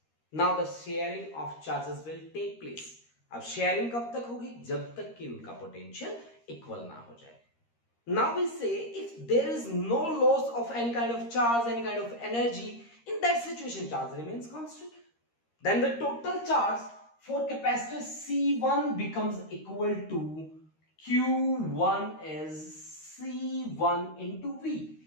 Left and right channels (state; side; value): late; right; 13 ms